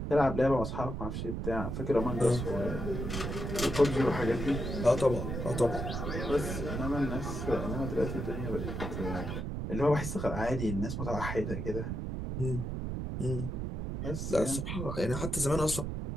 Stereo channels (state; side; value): noise; right; rumble, 4 dB below the sound